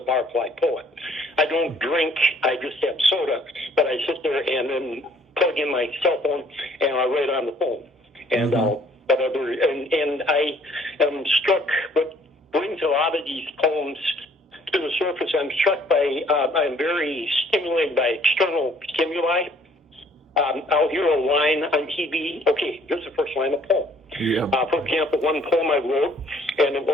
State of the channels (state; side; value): normal; both; correlation 0.59